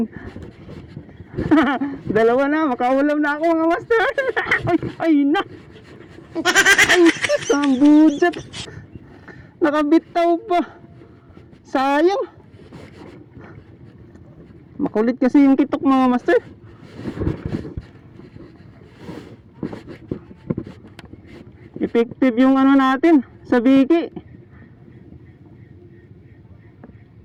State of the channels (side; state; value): both; identical; correlation 1.00